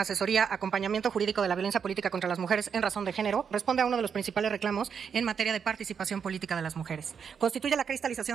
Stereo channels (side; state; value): left; quieter; 6.9 dB